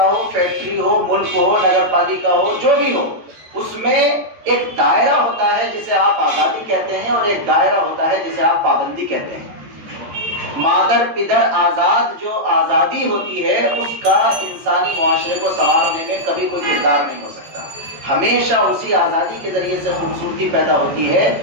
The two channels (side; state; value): left; late; 14 ms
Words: ہو، فیکٹری ہو، ملک ہو، نگر پالیکا ہو، جو بھی ہو، اس میں ایک دائرہ ہوتا ہے جسے آپ آزادی کہتے ہیں، اور ایک دائرہ ہوتا ہے جسے آپ پابندی کہتے ہیں۔ مادر پدر آزاد جو آزادی ہوتی ہے، اس کا انسانی معاشرے کو سنوارنے میں کبھی کوئی کردار نہیں ہو سکتا۔ ہمیشہ اسی آزادی کے ذریعے سے خوبصورتی پیدا ہوتی ہے